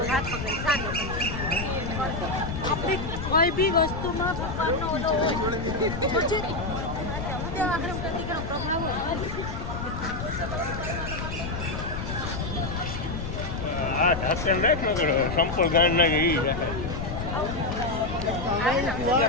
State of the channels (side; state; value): left; noise; rumble, 5 dB below the sound